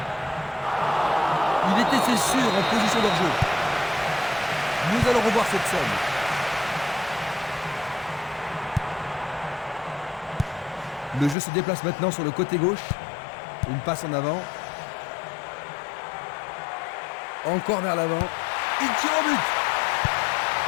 Il était, c'est sûr, en position d'hors-jeu. Nous allons revoir cette scène. Le jeu se déplace maintenant sur le côté gauche. Une passe en avant. Encore vers l'avant. Il tire au but.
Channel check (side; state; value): right; drops out; at 11.4 s